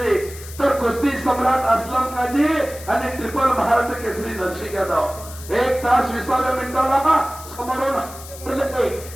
तर कुस्ती सम्राट असलम काजी आणि ट्रिपल महाराष्ट्र केसरी नरसिंग यादव. 1 तास 20व्या मिनिटाला समोरून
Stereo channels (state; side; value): noise; left; hiss, 15 dB below the sound